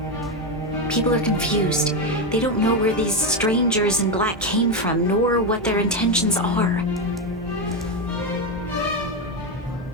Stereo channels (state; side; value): normal; both; correlation 0.10